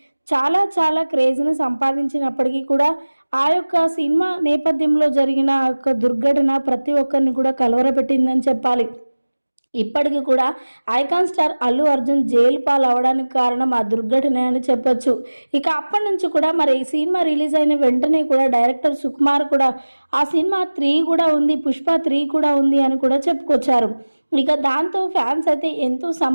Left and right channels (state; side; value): inverted; both; correlation -1.00